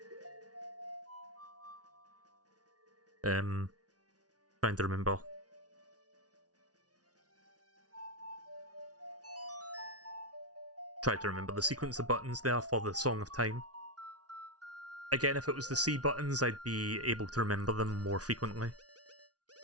Trying to remember. Try to remember the sequence of buttons there for the Song of Time. Again, if it was the C buttons, I'd be able to remember them more frequently.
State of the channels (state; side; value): late; left; 0.68 ms